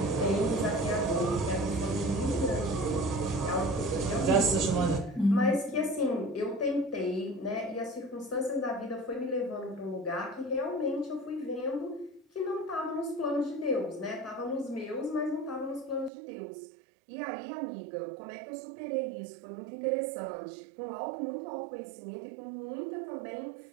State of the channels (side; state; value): left; drops out; at 16.1 s